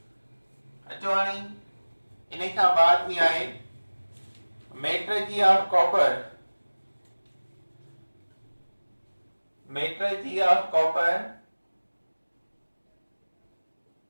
अचो हाणे इन खां बाद में आहे मेट्रलर्जी ऑफ कॉपर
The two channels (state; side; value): inverted; both; correlation -1.00